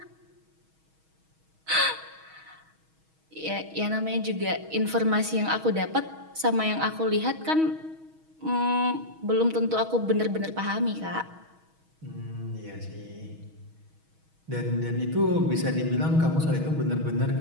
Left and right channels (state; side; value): late; left; 6.3 ms